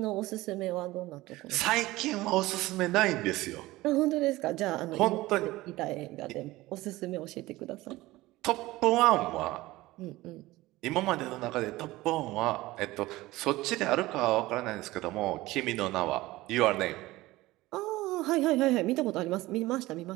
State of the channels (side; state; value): left; quieter; 18.6 dB